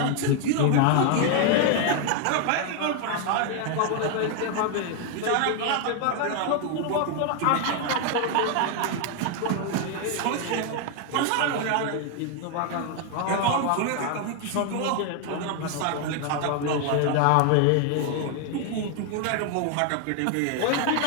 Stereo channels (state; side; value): different; both; correlation 0.00